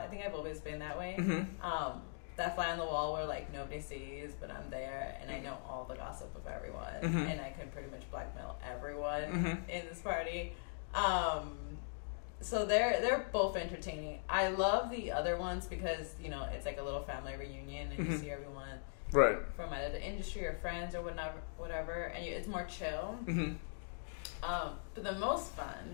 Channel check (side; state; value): right; silent; digital silence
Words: think I've always been that way. That fly on the wall where like nobody sees, but I'm there and I know all the gossip of everyone, and I can pretty much blackmail everyone in this party. So they're both entertaining. I love the other ones because, it's like a little family reunion and you see everyone from either the industry or friends or whatever, and it's more chill. But the most